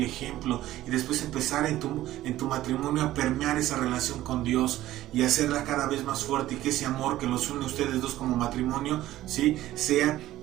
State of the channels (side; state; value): left; quieter; 14.8 dB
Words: ejemplo y después empezar en tu matrimonio a permear esa relación con Dios y hacerla cada vez más fuerte y que ese amor que los une a ustedes dos como matrimonio, ¿sí? Sea